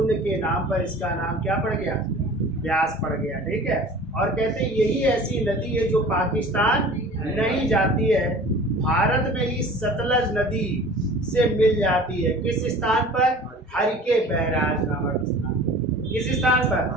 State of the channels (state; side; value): normal; both; correlation 0.43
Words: के नाम पर इसका नाम क्या पड़ गया? व्यास पड़ गया, ठीक है। और कहते हैं यही ऐसी नदी है जो पाकिस्तान नहीं जाती है, भारत में ही सतलज नदी से मिल जाती है। किस स्थान पर? हरिके बैराज नामक स्थान। किस स्थान पर?